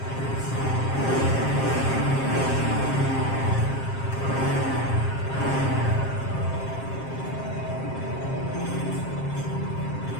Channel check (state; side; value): late; right; 7.5 ms